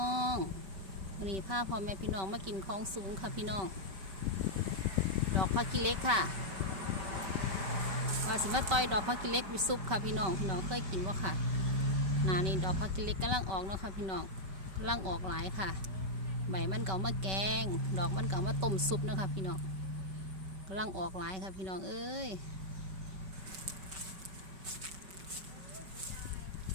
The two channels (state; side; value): late; left; 5.2 ms